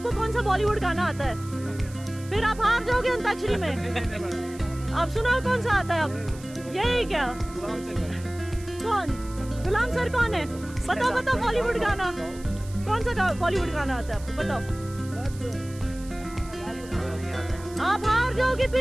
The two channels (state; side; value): noise; right; hiss, 20 dB below the sound